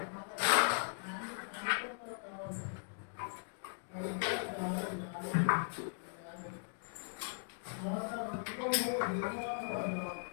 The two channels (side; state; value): right; silent; digital silence